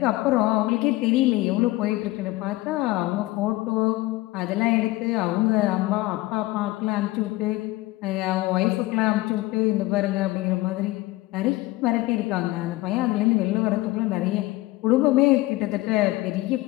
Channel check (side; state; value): right; quieter; 19.3 dB